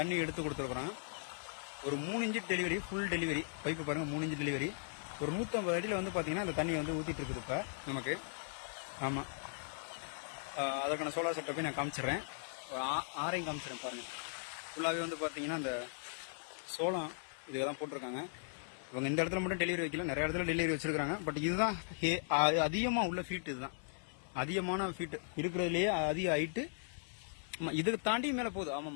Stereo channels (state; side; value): silent; right; 52 dB below the other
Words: எடுத்து கொடுத்துருக்குறோம். ஒரு 3 inch delivery, full delivery pipe பாருங்கள், 3 இன்ச்சு டெலிவரி. ஒரு 150 அடியில் வந்து பார்த்தீங்கன்னா அந்த தண்ணி வந்து ஊற்றிட்டு இருக்குது இப்போ நமக்கு. ஆமாம், அதற்கான சோலார் செட்டப்பையும் நான் காமிச்சிடுறேன். ஆறையும் காமிச்சிடுறேன் பாருங்கள். ஃபுல்லாகவே வந்து பார்த்தீங்கன்னா அந்த சோளம் இதுக்கு தான் போட்டிருக்காங்க. இவங்க இந்த இடத்துல மட்டும் டெலிவரி வைக்கல, நிறைய இடத்துல டெலிவரி வச்சிருக்காங்க. பட் இதுதான் அதிகமாக உள்ள ஃபீட், இதுதான் அதிகமான ஃபீட் இருக்கிறதுலேயே அதிக ஹைட்டு. இதுக்கு தாண்டி மேலே போகுது.